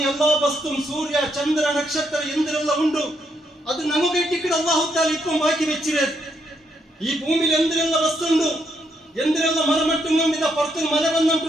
എല്ലാ വസ്തുവും സൂര്യ ചന്ദ്ര നക്ഷത്ര എന്തെല്ലാം ഉണ്ട് അത് നമുക്ക് ഇട്ടിട്ട് അല്ലാഹു തആല ഇപ്പം ബാക്കി വെച്ചിരുന്നത്. ഈ ഭൂമിയിൽ എന്തെല്ലാം വസ്തു ഉണ്ട്, എന്തെല്ലാം മരമട്ടും ഇതാ പുറത്ത് മല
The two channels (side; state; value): both; normal; correlation 0.76